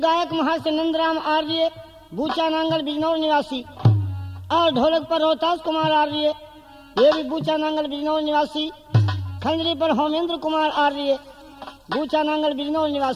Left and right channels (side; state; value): both; identical; correlation 1.00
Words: महर्षि नंदराम आर्य, बूचा नांगल बिजनौर निवासी, और ढोलक पर रोहतास कुमार आर्य, ये भी बूचा नांगल बिजनौर निवासी। खंजरी पर होमेंद्र कुमार आर्य, बूचा नांगल बिजनौर